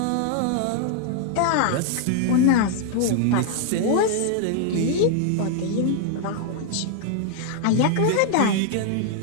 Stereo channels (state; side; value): different; both; correlation 0.00